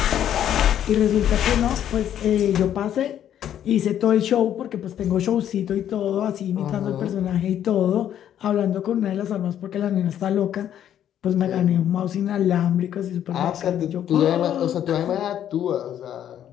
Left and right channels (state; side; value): quieter; right; 10.4 dB